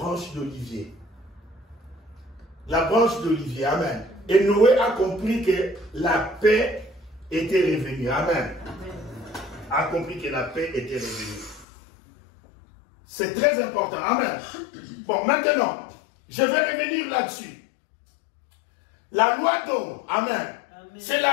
d'olivier. La branche d'olivier, Amen. Et Noé a compris que la paix était revenue, Amen. A compris que la paix était revenue. C'est très important, Amen. Bon, maintenant, je vais revenir là-dessus. La loi d'Ohm, Amen, c'est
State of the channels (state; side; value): drops out; right; at 11.7 s